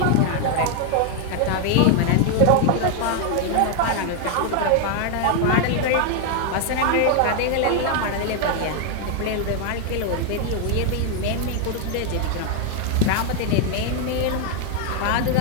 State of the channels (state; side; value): different; both; correlation 0.01